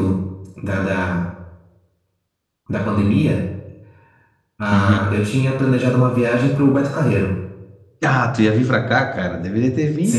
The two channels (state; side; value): identical; both; correlation 1.00